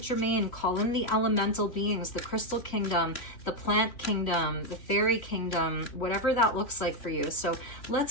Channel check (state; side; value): late; right; 3.1 ms